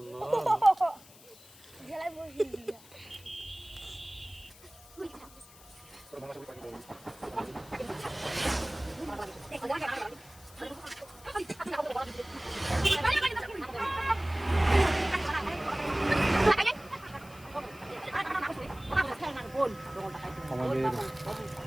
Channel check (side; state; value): left; noise; hiss, 22 dB below the sound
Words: না জেলায় বসে দিয়া আমাদের